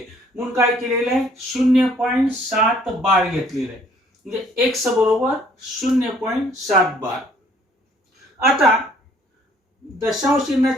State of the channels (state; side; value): normal; both; correlation 0.61